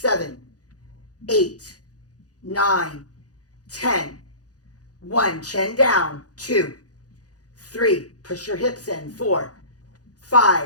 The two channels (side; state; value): right; late; 0.68 ms